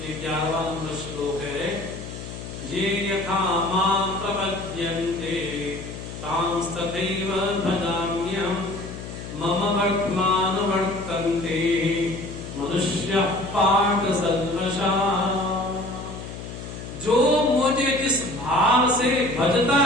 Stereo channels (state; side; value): noise; left; hum, 10 dB below the sound